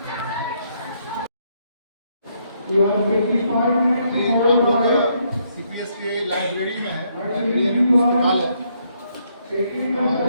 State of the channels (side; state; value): both; inverted; correlation -0.73